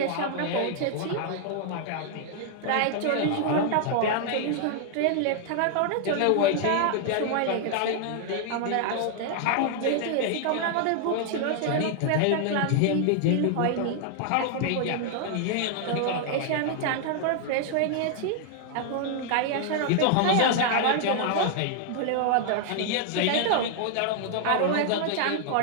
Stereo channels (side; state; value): both; different; correlation 0.00